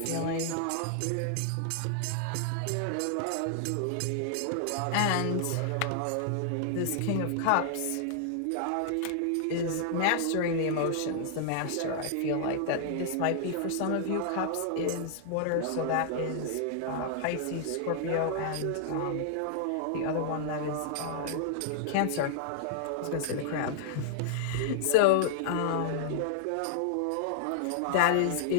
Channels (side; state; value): both; different; correlation -0.01